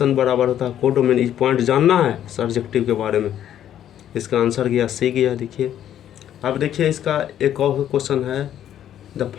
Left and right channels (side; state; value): right; quieter; 10.8 dB